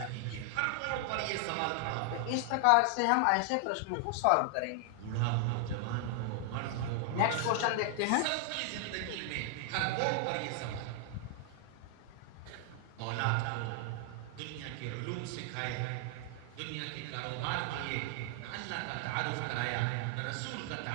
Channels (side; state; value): both; different; correlation 0.00